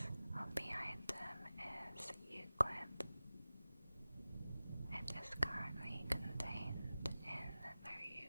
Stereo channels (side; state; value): both; inverted; correlation -0.96